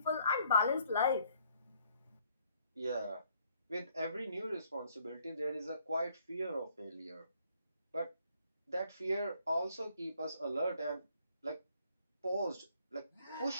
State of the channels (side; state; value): both; inverted; correlation -0.66